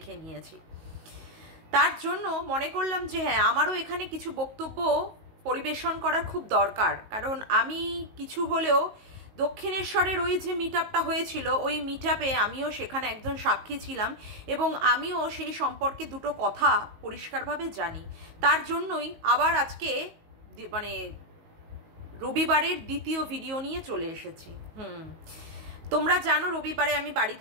নিয়েছি। তার জন্য মনে করলাম যে হ্যাঁ, আমারও এখানে কিছু বক্তব্য পরিবেশন করার খুব দরকার। কারণ আমি কিছু হলেও দক্ষিণেশ্বরের ওই যে মিট আপটা হয়েছিল, ওই মিট আপে আমিও সেখানে একজন সাক্ষী ছিলাম এবং আমিও সেই সম্পর্কে দুটো কথা পরিষ্কারভাবে জানি। তার জন্যই আবার আজকে মানে রবিবারের দ্বিতীয় ভিডিও নিয়ে চলে এসেছি। তোমরা জানো রবিবারে আমি বাড়ি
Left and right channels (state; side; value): late; left; 19 ms